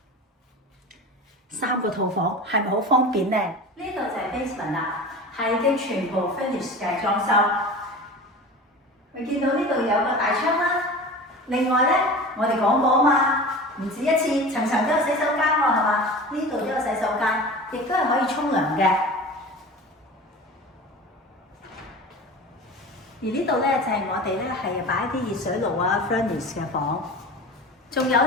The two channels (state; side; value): normal; both; correlation 0.34